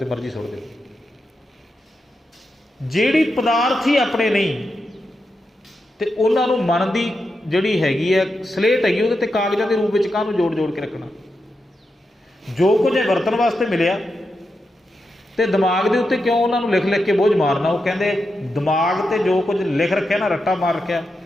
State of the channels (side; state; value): both; normal; correlation 0.87